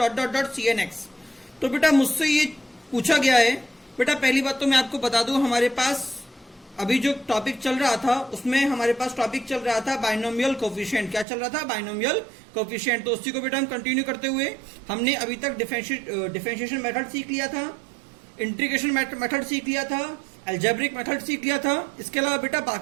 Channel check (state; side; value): drops out; left; at 11.2 s